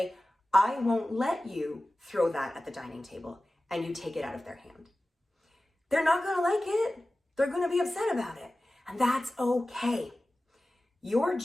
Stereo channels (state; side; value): normal; both; correlation 0.96